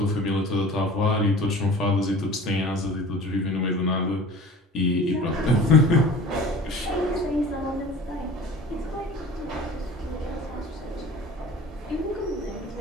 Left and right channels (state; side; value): normal; both; correlation 0.42